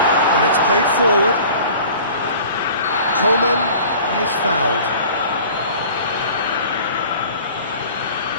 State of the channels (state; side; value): inverted; both; correlation -0.45